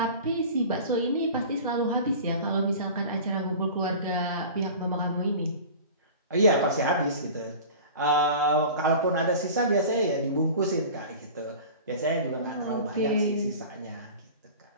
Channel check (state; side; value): inverted; both; correlation -0.38